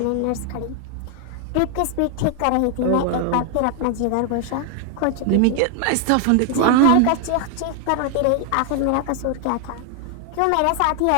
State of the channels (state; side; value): different; both; correlation 0.00